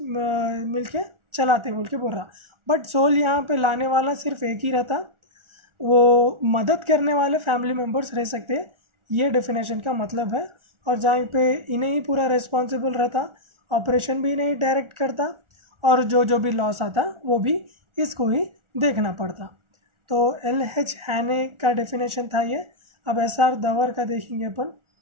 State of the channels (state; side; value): late; left; 1.4 ms